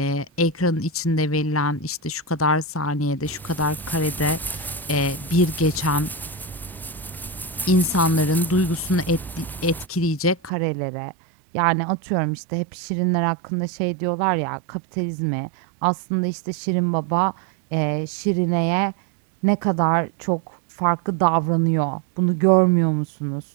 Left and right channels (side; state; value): left; drops out; at 10.5 s